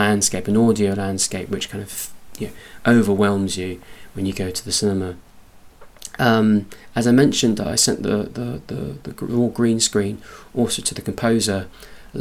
an audio landscape, which kind of overwhelms you when you go to the cinema. As I mentioned, I sent the raw green screen also to the composer, a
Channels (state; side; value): identical; both; correlation 1.00